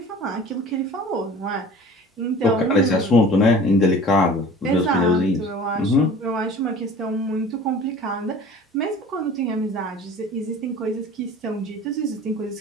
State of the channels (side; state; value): both; normal; correlation 0.43